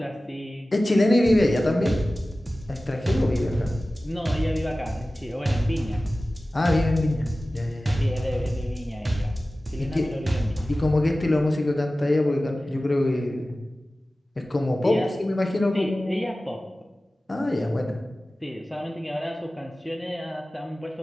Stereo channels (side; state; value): both; normal; correlation 0.96